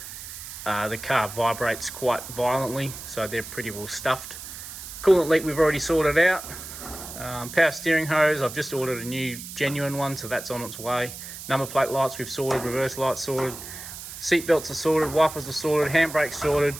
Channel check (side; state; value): right; noise; hiss, 11 dB below the sound